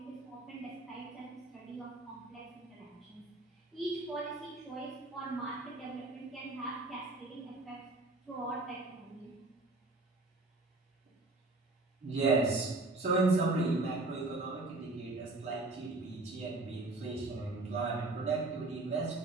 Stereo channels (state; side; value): quieter; left; 3.1 dB